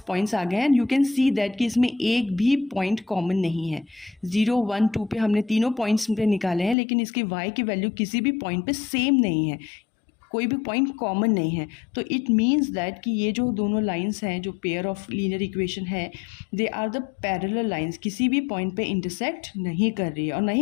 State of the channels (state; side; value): drops out; right; at 6.8 s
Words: पॉइंट्स आ गए हैं and you can see that कि इसमें एक भी पॉइंट कॉमन नहीं है. 0, 1, 2 पे हमने तीनों पॉइंट्स पे निकाले हैं लेकिन इसकी y की वैल्यू किसी भी पॉइंट पे सेम नहीं है, कोई भी पॉइंट कॉमन नहीं है. तो इट मीन्स दैट कि ये जो दोनों लाइंस हैं जो पेयर ऑफ लीनियर इक्वेशन है they are the parallel lines, किसी भी पॉइंट पे इंटरसेक्ट नहीं कर रही है और ना